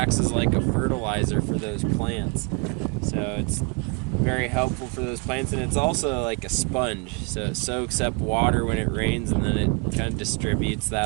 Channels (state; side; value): quieter; left; 29.0 dB